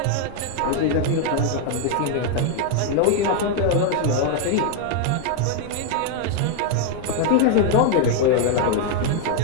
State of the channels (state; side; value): different; both; correlation 0.00